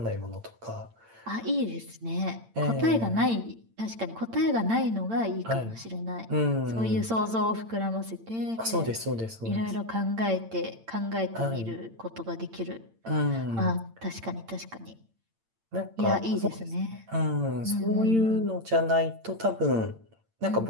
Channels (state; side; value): late; left; 8.8 ms